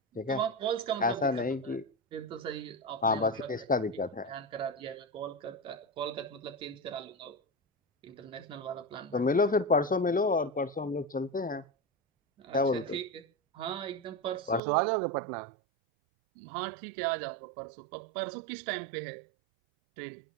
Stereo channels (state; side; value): drops out; left; at 14.6 s